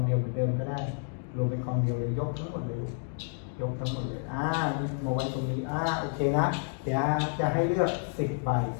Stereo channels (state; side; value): silent; right; 58 dB below the other